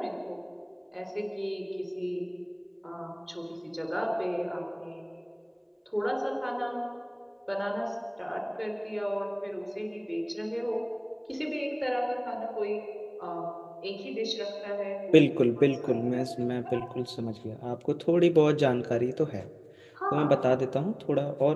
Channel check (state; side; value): identical; both; correlation 1.00